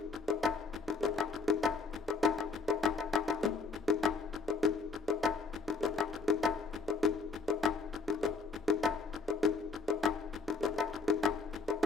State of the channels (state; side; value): quieter; right; 4.2 dB